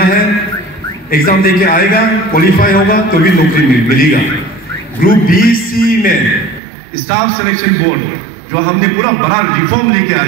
है, एग्जाम देके आएगा, क्वालिफाई होगा तो भी नौकरी मिलेगा। ग्रुप बी सी में स्टाफ सिलेक्शन बोर्ड जो हमने पूरा बड़ा रिफॉर्म लेके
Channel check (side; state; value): left; drops out; at 6.6 s